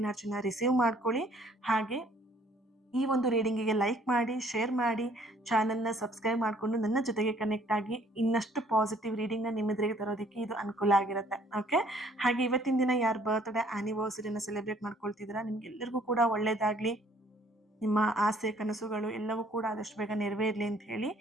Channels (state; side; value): normal; both; correlation 0.60